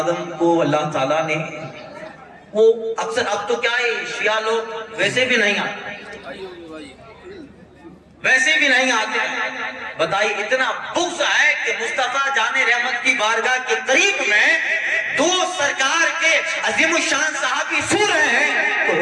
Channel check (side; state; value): both; identical; correlation 1.00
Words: کو اللہ تعالیٰ نے، وہ اکثر اب تو کیا ہے شیعہ لوگ ویسے بھی نہیں آتے، بتائیے اتنا بغض ہے کہ مصطفیٰ جان رحمت کی بارگاہ کے قریب میں دو سرکار کے عظیم الشان صحابی سو رہے ہیں تو